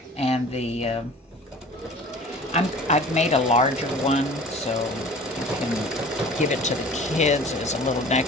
and the I've made a larger one so you can give it to the kids as a little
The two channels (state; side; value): normal; both; correlation 0.44